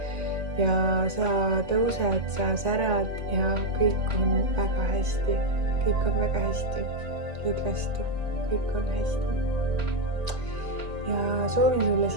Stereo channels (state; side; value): late; left; 1.8 ms